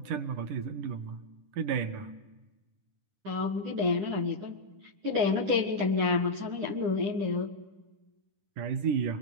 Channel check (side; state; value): left; late; 10 ms